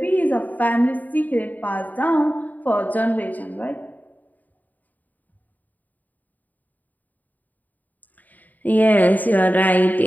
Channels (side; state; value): right; late; 0.082 ms